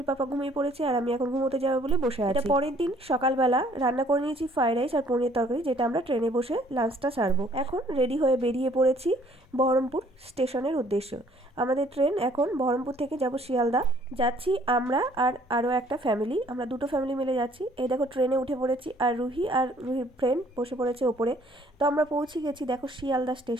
পাপা ঘুমিয়ে পড়েছে, আর আমি এখন ঘুমোতে যাবো বলে বসে আছি। এটা পরের দিন সকালবেলা রান্না করে নিয়েছি ফ্রাইড রাইস আর পনির তরকারি, যেটা আমরা ট্রেনে বসে লাঞ্চটা সারবো। এখন রেডি হয়ে বেরিয়ে পড়েছি বহরমপুর স্টেশনের উদ্দেশ্য। আমাদের ট্রেন এখন বহরমপুর থেকে যাব শিয়ালদা। যাচ্ছি আমরা আর আরও একটা ফ্যামিলি, আমরা দুটো ফ্যামিলি মিলে যাচ্ছি। এই দেখো ট্রেনে উঠে পড়েছি, আর রুহির ফ্রেন্ড বসে পড়েছে ওপরে। তো আমরা পৌঁছে গেছি দেখো শিয়ালদা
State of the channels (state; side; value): normal; both; correlation 0.60